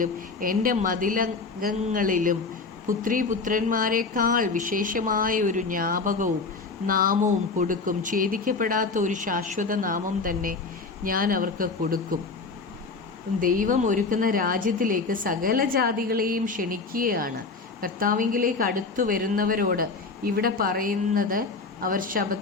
എൻ്റെ മതിലകങ്ങളിലും പുത്രീപുത്രന്മാരെക്കാൾ വിശേഷമായ ഒരു ജ്ഞാപകവും നാമവും കൊടുക്കും. ഛേദിക്കപ്പെടാത്ത ഒരു ശാശ്വത നാമം തന്നെ ഞാൻ അവർക്ക് കൊടുക്കും. ദൈവം ഒരുക്കുന്ന രാജ്യത്തിലേക്ക് സകല ജാതികളെയും ക്ഷണിക്കുകയാണ്. കർത്താവിങ്കിലേക്ക് അടുത്തു വരുന്നവരോട് ഇവിടെ പറയുന്നത് അവർ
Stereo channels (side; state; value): right; quieter; 4.2 dB